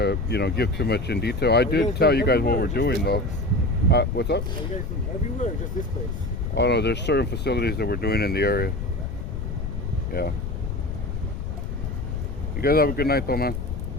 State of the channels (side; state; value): left; noise; rumble, 4 dB below the sound